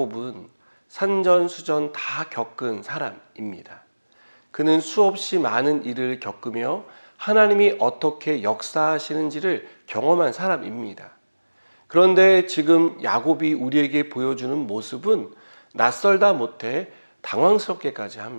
산전수전 다 겪은 사람입니다. 그는 수없이 많은 일을 겪으며 하나님이 어떻게 역사하시는지를 경험한 사람입니다. 그런데 지금 야곱이 우리에게 보여주는 모습은 낯설다 못해 당황스럽게까지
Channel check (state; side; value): inverted; both; correlation -1.00